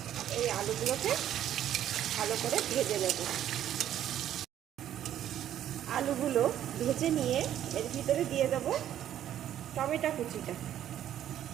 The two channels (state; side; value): quieter; left; 11.2 dB